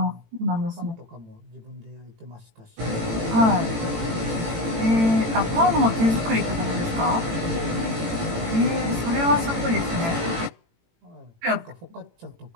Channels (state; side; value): late; left; 18 ms